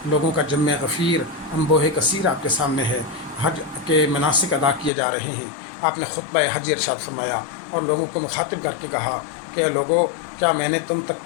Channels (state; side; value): drops out; right; at 4.9 s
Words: لوگوں کا جمع غفیر انبوہ کثیر آپ کے سامنے ہے، حج کے مناسک ادا کیے جا رہے ہیں۔ آپ نے خطبہ حج ارشاد فرمایا اور لوگوں کو مخاطب کر کے کہا کہ لوگوں، کیا میں نے تم تک